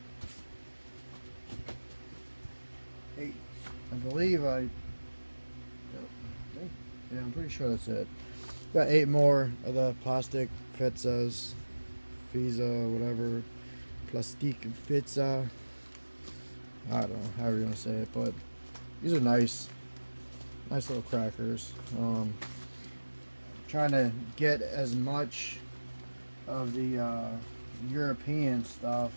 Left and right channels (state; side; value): inverted; both; correlation -1.00